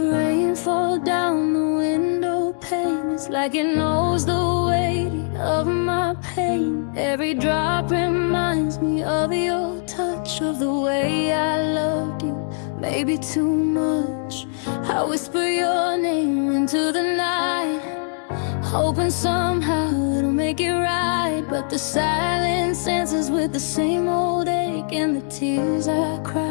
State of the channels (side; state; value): right; silent; digital silence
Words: rain fall down the window pane. It's like it knows the weight of my pain. Every drop reminds me of your touch, of the way I loved you, maybe too much. I whisper your name into the night, hoping somehow it'll make it right. But the silence answers with the same old ache, and the tears I